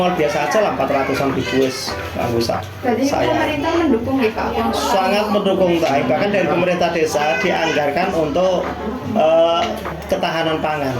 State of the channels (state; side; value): identical; both; correlation 1.00